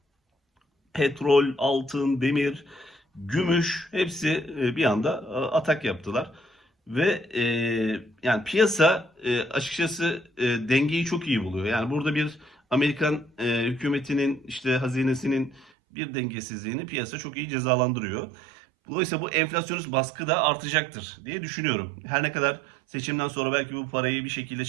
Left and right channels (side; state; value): left; drops out; at 15.7 s